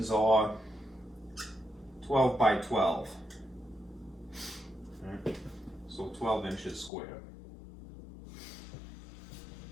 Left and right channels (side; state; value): right; drops out; at 6.9 s